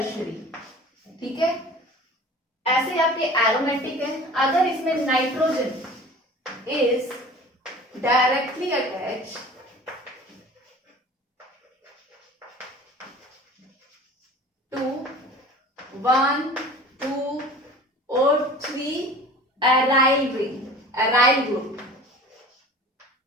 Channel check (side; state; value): both; normal; correlation 0.42